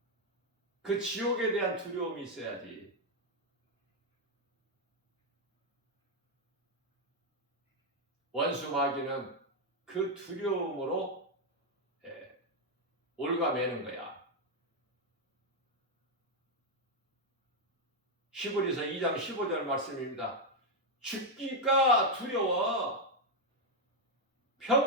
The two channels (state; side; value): normal; both; correlation 0.02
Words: 그 지옥에 대한 두려움이 있어야지. 원수 마귀는 그 두려움으로 올가매는 거야. 히브리서 2장 15절 말씀입니다. 죽기가 두려워